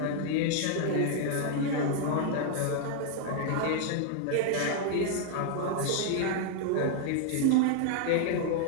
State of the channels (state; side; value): different; both; correlation 0.00